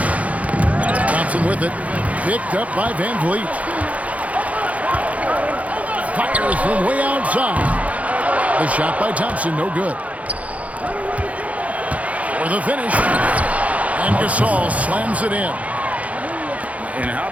Thompson with it. Picked up by Van Vliet. Fires from way outside. The shot by Thompson, no good. For the finish. And Gasol slams it in. And how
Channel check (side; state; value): left; late; 0.067 ms